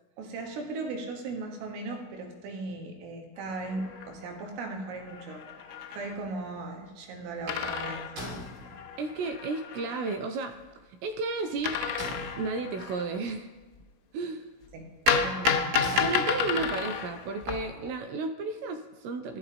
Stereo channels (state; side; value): late; left; 16 ms